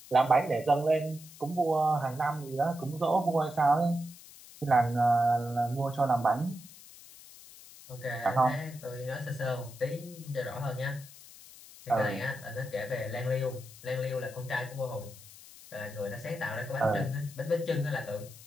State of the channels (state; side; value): noise; left; hiss, 19 dB below the sound